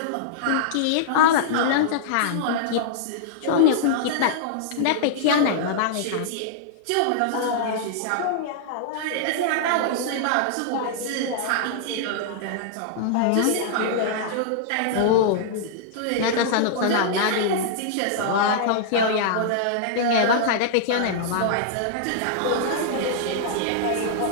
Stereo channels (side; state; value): both; different; correlation -0.01